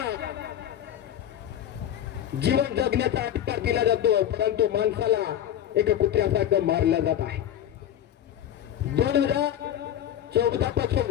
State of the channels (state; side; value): quieter; right; 10.7 dB